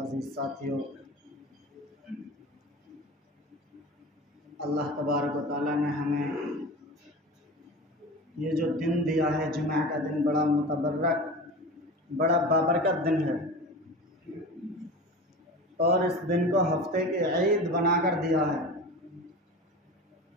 साथियों, अल्लाह तबारक व तआला ने हमें ये जो दिन दिया है, जुमा का दिन, बड़ा मुतबर्रक, बड़ा बाबरकत दिन है और इस दिन को हफ्ते के ईद बनाकर दिया है।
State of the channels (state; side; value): normal; both; correlation 0.33